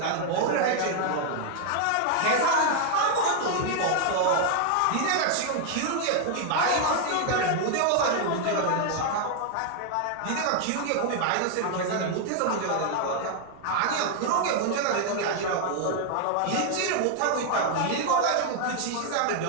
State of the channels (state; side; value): different; both; correlation 0.00